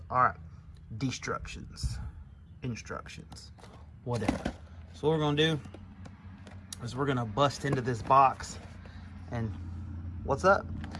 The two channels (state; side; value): identical; both; correlation 1.00